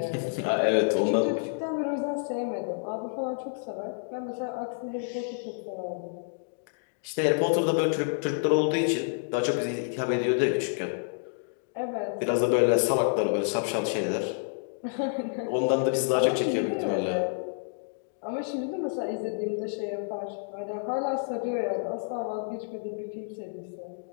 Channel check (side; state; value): right; silent; digital silence